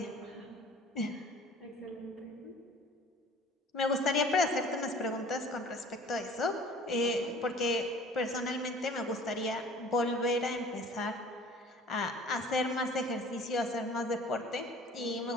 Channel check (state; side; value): normal; both; correlation 0.48